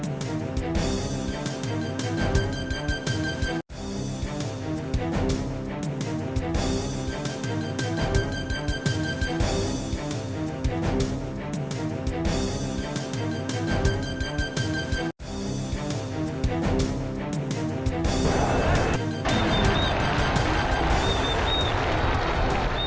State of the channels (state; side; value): identical; both; correlation 1.00